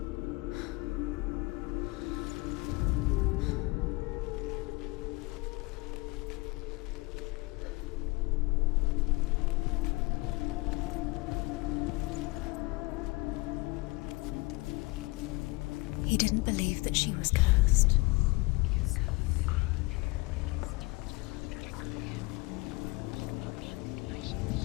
He didn't believe that she was cursed. He saved you when everyone else turned their back on you.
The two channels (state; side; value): quieter; right; 24.2 dB